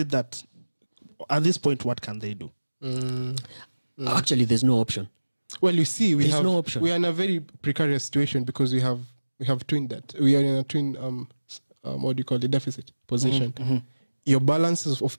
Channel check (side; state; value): both; inverted; correlation -1.00